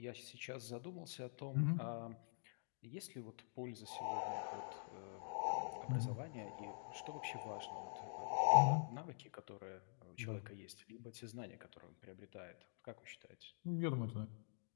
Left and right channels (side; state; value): right; silent; digital silence